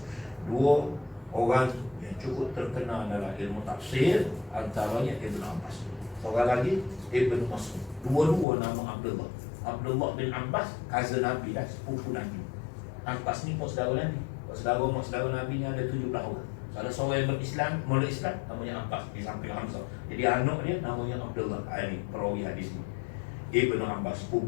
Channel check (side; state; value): right; drops out; at 8.5 s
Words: Dua orang yang cukup terkenal dalam ilmu tafsir, antaranya Ibnu Abbas. Seorang lagi Ibnu Mas'ud. Dua-dua nama Abdullah. Abdullah bin Abbas, cousin Nabi dah, sepupu Nabi. Abbas ni mak saudara Nabi. Mak saudara Nabi ni ada 17 orang. Salah seorang yang berislam, mula Islam, namanya Abbas, di samping Hamzah. Jadi anak dia namanya Abdullah. Ini perawi hadis ni. Ibnu Abbas,